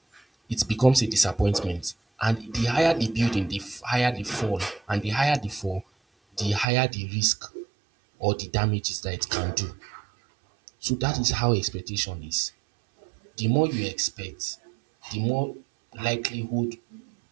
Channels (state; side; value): drops out; left; at 6.7 s